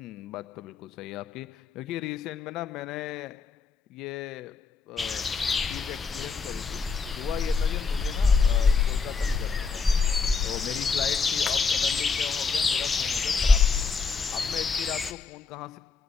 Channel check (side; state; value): right; quieter; 5.0 dB